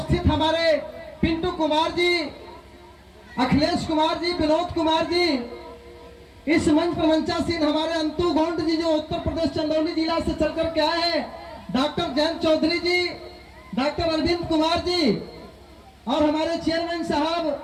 हमारे पिंटू कुमार जी, अखिलेश कुमार जी, विनोद कुमार जी, इस मंच पर मंचासीन हमारे अंतु गोंड जी जो उत्तर प्रदेश चंदौली जिला से चलकर के आए हैं, डॉक्टर जयंत चौधरी जी, डॉक्टर अरविंद कुमार जी और हमारे चेयरमैन साहब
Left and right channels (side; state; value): both; identical; correlation 1.00